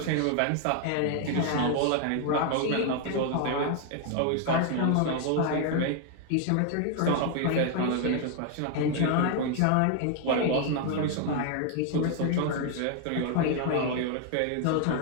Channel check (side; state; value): both; different; correlation 0.00